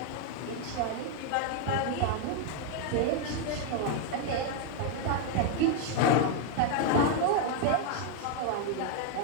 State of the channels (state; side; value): different; both; correlation 0.01